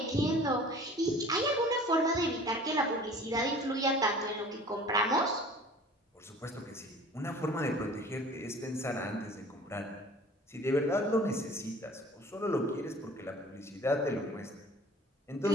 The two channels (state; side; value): normal; both; correlation 0.46